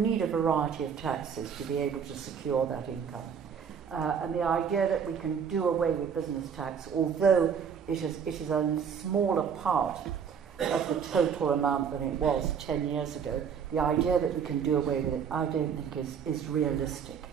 a variety of taxes to be able to secure that income. And the idea that we can do away with business tax, although it is a smaller part of the total amount than it was 10 years ago, the idea that we can do away with it, I don't think is realistic.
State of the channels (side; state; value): left; quieter; 7.1 dB